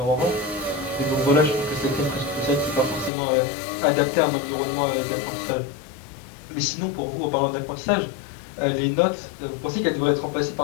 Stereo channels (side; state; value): right; drops out; at 3.1 s